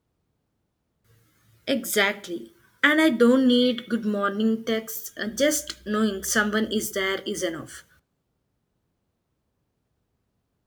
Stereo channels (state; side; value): identical; both; correlation 1.00